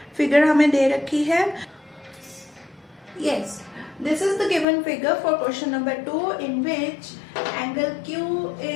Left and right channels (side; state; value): right; drops out; at 4.7 s